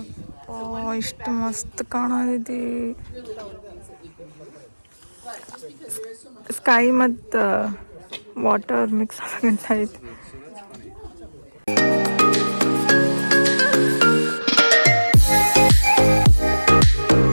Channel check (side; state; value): both; inverted; correlation -1.00